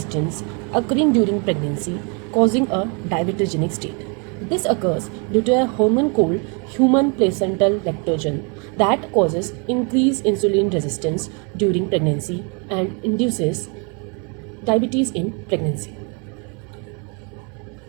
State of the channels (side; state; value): left; quieter; 34.9 dB